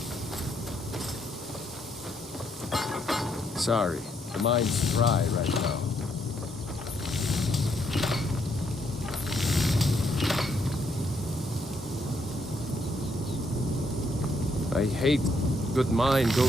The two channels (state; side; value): normal; both; correlation 0.74